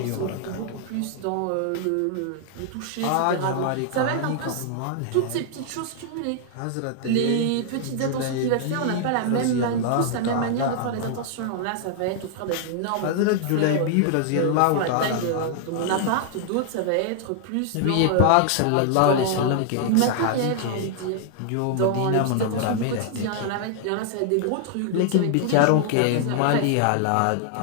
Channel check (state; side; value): different; both; correlation 0.00